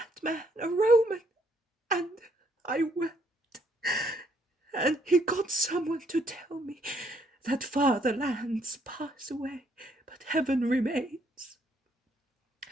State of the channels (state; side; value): normal; both; correlation 0.69